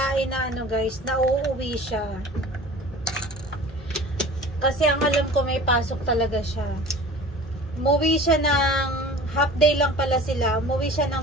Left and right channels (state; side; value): normal; both; correlation 0.41